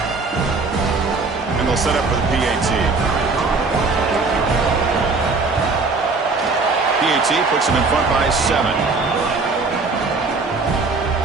And they'll set up for the PAT. PAT puts them in front by 7.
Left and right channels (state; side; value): quieter; left; 4.0 dB